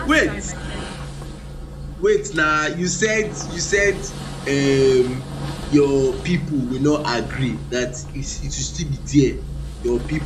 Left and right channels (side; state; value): both; identical; correlation 1.00